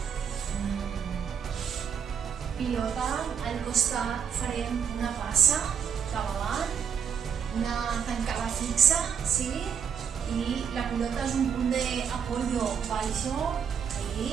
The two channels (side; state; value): left; quieter; 7.5 dB